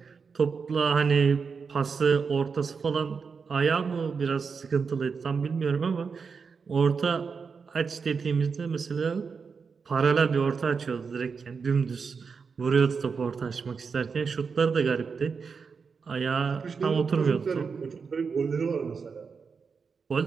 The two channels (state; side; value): quieter; left; 5.5 dB